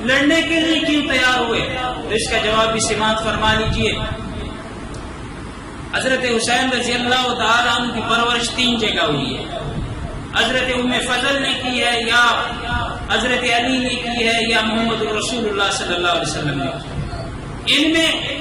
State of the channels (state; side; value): identical; both; correlation 1.00